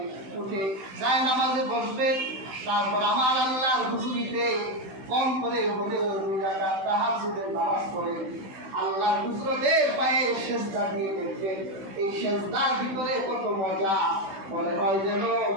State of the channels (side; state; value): left; late; 16 ms